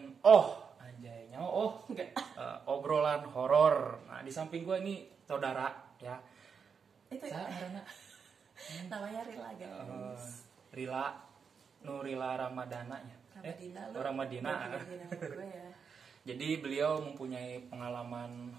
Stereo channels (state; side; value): quieter; left; 6.2 dB